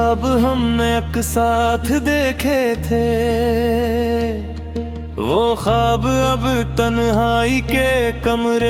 हमने एक साथ देखे थे, वो ख्वाब अब तन्हाई के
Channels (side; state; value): both; identical; correlation 1.00